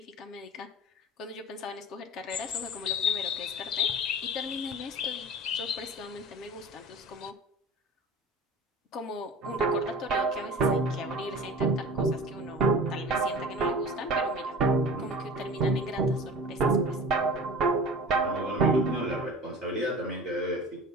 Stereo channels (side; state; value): both; normal; correlation 0.38